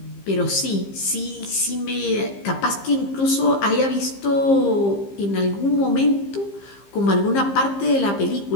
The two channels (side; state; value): right; late; 15 ms